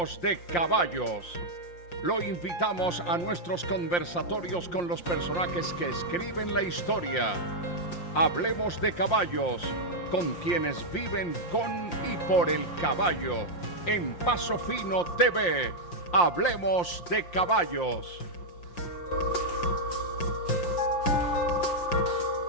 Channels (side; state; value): right; late; 5.7 ms